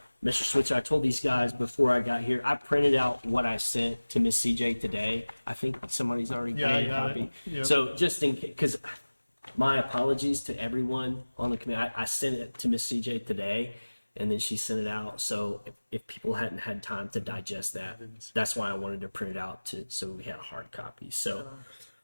Mr. Switzer, I told these guys before I got here, I printed out what I sent to Miss CJ today. I think somebody's already Yeah, I made a got copy. it. Yep. So just in case, because my apologies to everyone on the committee. I sent it to Miss CJ today, and then she sent it out. So if people hadn't had time to digest that, that's why I wanted to print it out so we had a hard copy. So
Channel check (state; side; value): inverted; both; correlation -1.00